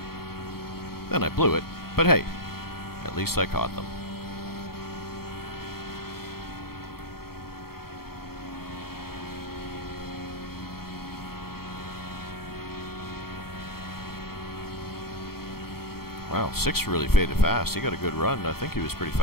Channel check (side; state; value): right; late; 0.94 ms